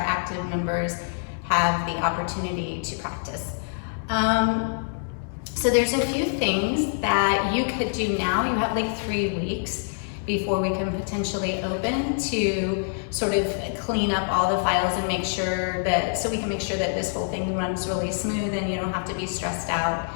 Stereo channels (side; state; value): right; silent; digital silence